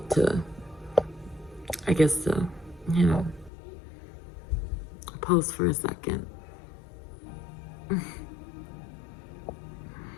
you know, pause for a second.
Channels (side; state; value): right; drops out; at 3.5 s